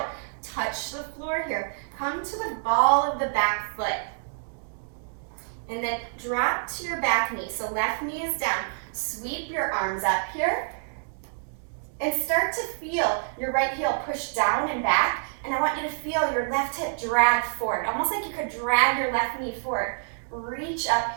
touch the floor here. Come to the ball of the back foot. And then drop to your back knee. So left knee is down. Sweep your arms up here. And start to feel your right heel push down and back. And I want you to feel your left hip drag forward. Almost like you could drag your left knee forward. Reach up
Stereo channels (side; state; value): left; silent; digital silence